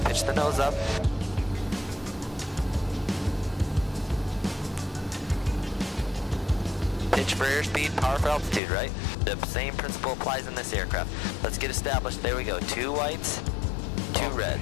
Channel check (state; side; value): drops out; right; at 8.6 s